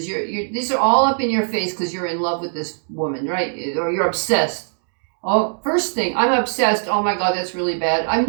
These are all up in your face because you're in love with this woman, right? Or you're obsessed. Oh, first thing, I'm obsessed. Oh my God, that's really bad.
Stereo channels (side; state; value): left; silent; digital silence